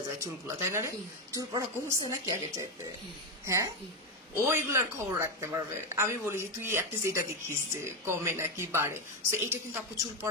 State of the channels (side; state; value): both; normal; correlation 0.09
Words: যায় চুলগুলা, তাই না রে? চুল পড়া কমছে নাকি আগে চাইতে? হ্যাঁ, ও এগুলার খবর রাখতে পারবে। আমি বলি যে তুই অ্যাটলিস্ট এটা দেখিস যে কমে নাকি বাড়ে। সো এটা কিন্তু আপু চুল